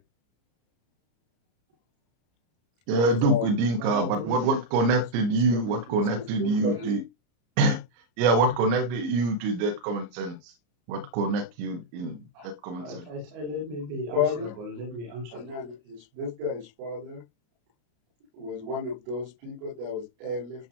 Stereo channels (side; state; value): left; late; 34 ms